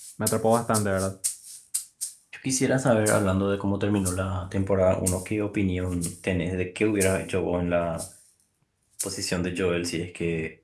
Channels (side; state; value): both; identical; correlation 1.00